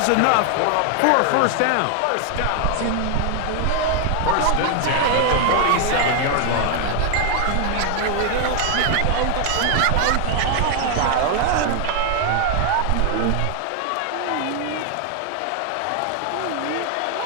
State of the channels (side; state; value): both; different; correlation 0.00